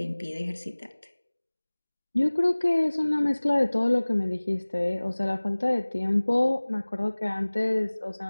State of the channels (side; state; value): both; inverted; correlation -1.00